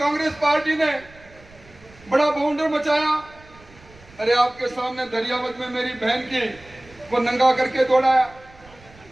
पार्टी ने बड़ा बाउंडर मचाया। अरे आपके सामने दरियावत में मेरी बहन की को नंगा करके दौड़ाया,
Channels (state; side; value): noise; right; rumble, 25 dB below the sound